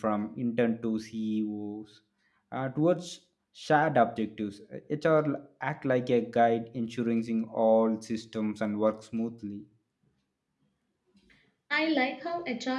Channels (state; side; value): identical; both; correlation 1.00